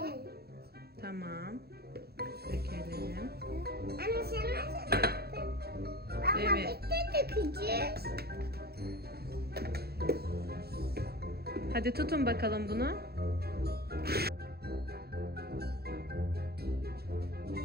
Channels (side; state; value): left; late; 0.46 ms